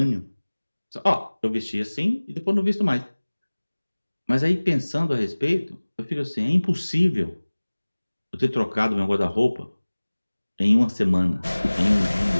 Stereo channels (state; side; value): inverted; both; correlation -1.00